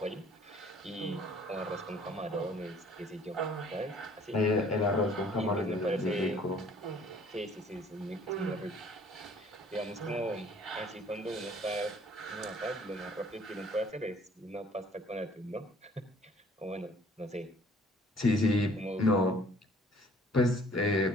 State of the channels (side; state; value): both; normal; correlation 0.56